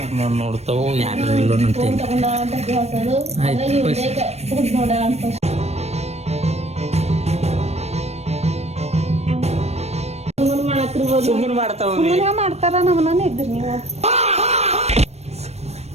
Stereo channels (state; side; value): late; left; 0.31 ms